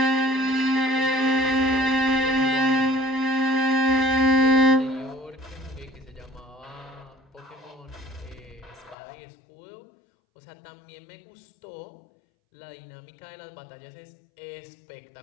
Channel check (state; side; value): drops out; right; at 9.0 s